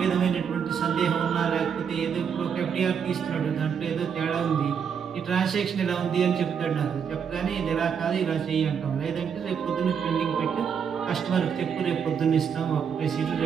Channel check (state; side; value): quieter; left; 7.1 dB